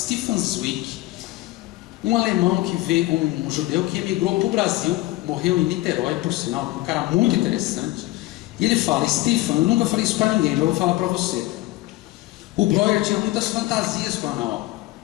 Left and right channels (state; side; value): quieter; right; 18.2 dB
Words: Zweig, um alemão que veio, um judeu que emigrou para o Brasil, morreu em Niterói, por sinal, um cara muito interessante. E ele fala: Stefan, eu nunca falei isso para ninguém, mas eu vou falar para você. O Breuer tinha muitas fantasias com a Ana.